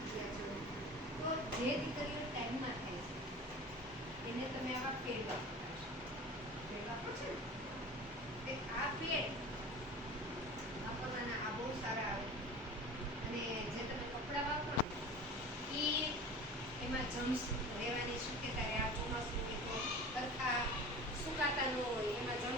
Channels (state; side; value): normal; both; correlation 0.37